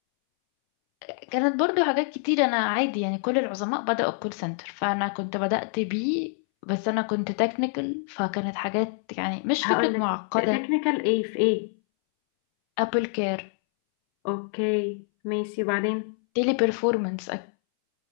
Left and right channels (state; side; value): silent; right; 61 dB below the other